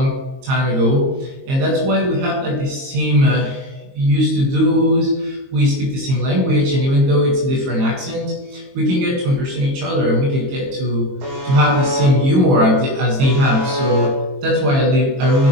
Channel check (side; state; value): left; late; 22 ms